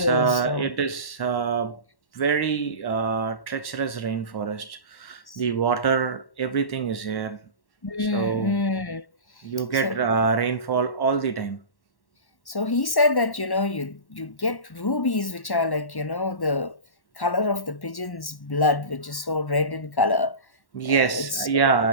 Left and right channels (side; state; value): right; late; 1.1 ms